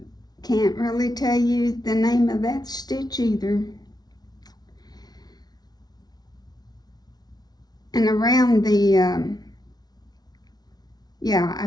Can't really tell you the name of that stitch either. And around the, I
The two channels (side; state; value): right; late; 0.19 ms